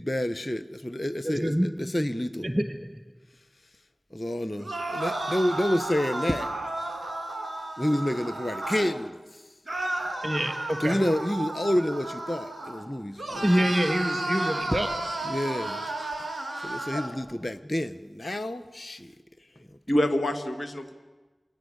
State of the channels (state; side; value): normal; both; correlation 0.96